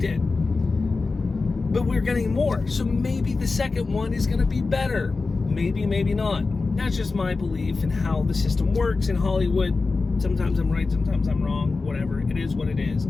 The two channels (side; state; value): right; quieter; 4.0 dB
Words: it. But we're getting more. So maybe the second one is going to be better. Maybe, maybe not. That's just my belief in how the system works in Hollywood. Sometimes I'm right, sometimes I'm wrong, whatever. It is what it is.